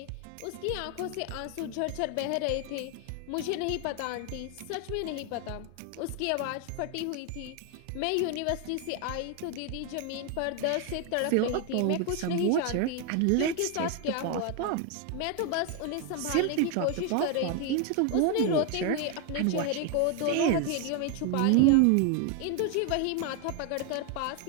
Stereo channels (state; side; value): different; both; correlation 0.01